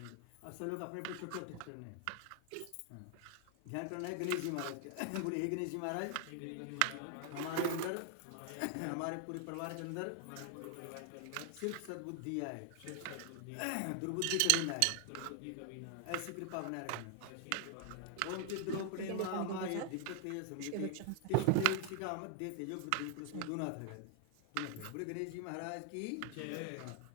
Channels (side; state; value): both; different; correlation 0.00